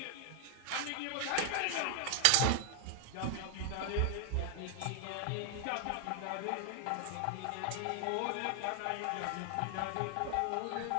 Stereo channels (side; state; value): both; different; correlation 0.00